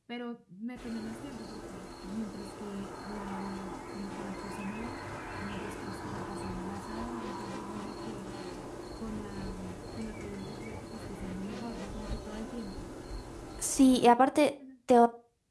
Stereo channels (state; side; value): identical; both; correlation 1.00